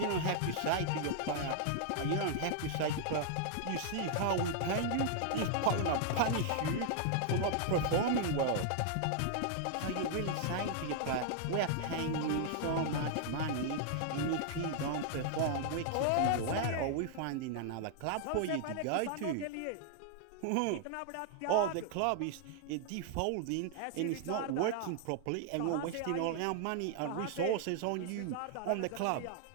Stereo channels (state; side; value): different; both; correlation 0.00